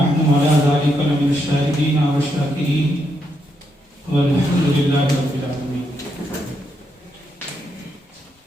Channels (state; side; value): normal; both; correlation 0.80